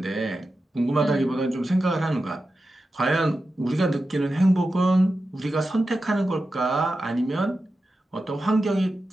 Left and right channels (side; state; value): both; normal; correlation 0.91